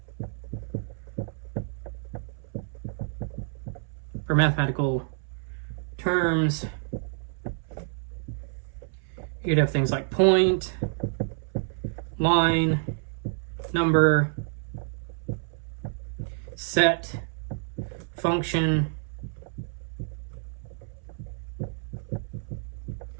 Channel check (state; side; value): silent; left; 59 dB below the other